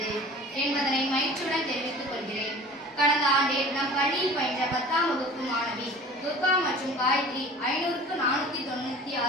என்பதனை மகிழ்ச்சியுடன் தெரிவித்துக் கொள்கிறேன். கடந்த ஆண்டில் நம் பள்ளியில் பயின்ற 10ஆம் வகுப்பு மாணவி துர்கா மற்றும் காயத்ரி 500க்கு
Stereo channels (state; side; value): normal; both; correlation 0.43